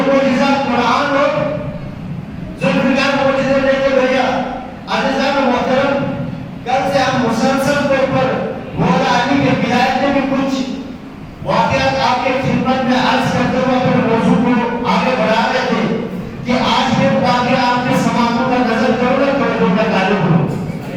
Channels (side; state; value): both; identical; correlation 1.00